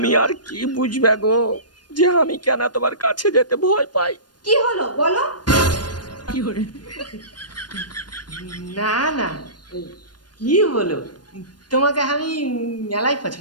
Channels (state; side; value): late; right; 0.70 ms